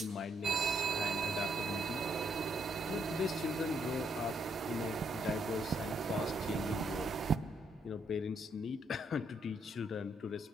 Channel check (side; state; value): both; normal; correlation 0.74